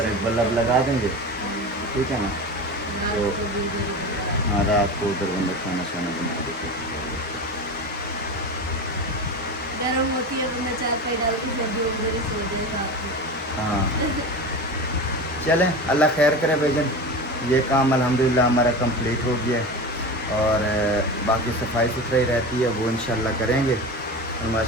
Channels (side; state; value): both; normal; correlation 0.27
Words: एक बल्ब लगा देंगे, ठीक है ना। तो हाँ रात को उधर बंदा खाना शाना बना देते, गर्म होती है बंदा चार पाई डाल के सर्दियों में उधर ही सो जाए। हाँ चलें, अल्लाह खैर करे भाईजान। ये काम अल्हम्दुलिल्लाह हमारा कंप्लीट हो गया है और बाकी सफाई सुथराई रहती है वो इंशाल्लाह करेंगे। और